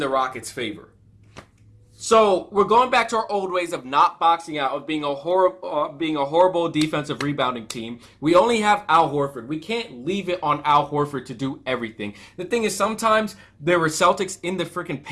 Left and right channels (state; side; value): identical; both; correlation 1.00